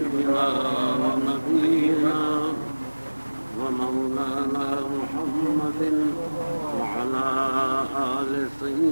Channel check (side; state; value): both; inverted; correlation -1.00